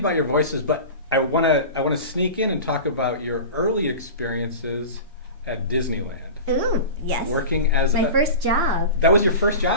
your voices, but I want to sneak in and talk about your early experiences at Disneyland. Ooh, yes. Working as my first job. That was your first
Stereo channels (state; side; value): inverted; both; correlation -0.32